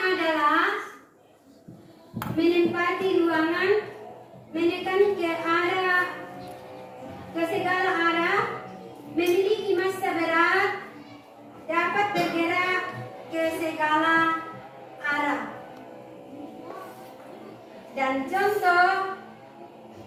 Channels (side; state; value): both; identical; correlation 1.00